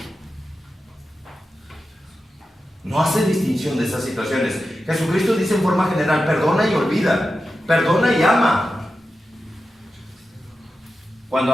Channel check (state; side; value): normal; both; correlation 0.91